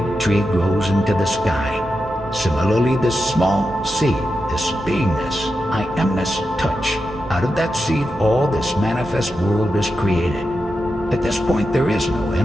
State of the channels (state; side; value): normal; both; correlation 0.89